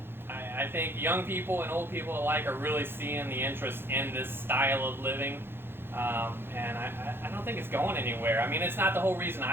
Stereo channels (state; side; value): late; left; 0.11 ms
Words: I think young people and old people alike are really seeing the interest in this style of living, and I don't think it's going anywhere. I mean, it's not the whole reason